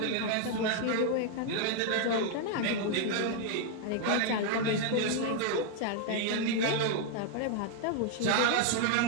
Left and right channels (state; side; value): different; both; correlation 0.00